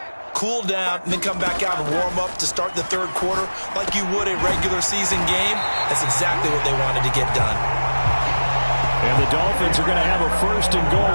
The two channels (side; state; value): both; inverted; correlation -1.00